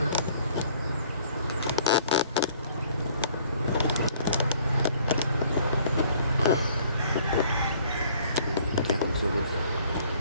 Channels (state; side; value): inverted; both; correlation -0.59